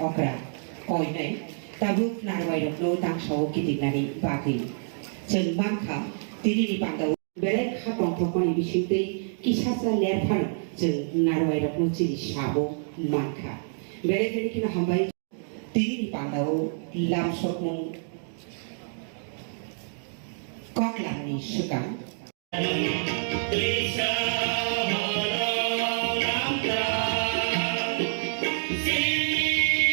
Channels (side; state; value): left; silent; digital silence